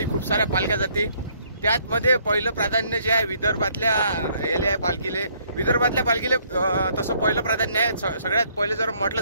खूप साऱ्या पालख्या जाते। त्यातमध्ये पहिलं प्राधान्य जे आहे विदर्भातल्या याले आहे पालखीले। विदर्भातल्या पालखीले तसं पहिलं प्राधान्य आहे। सगळ्यात पहिले जर म्हटलं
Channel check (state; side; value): inverted; both; correlation -0.66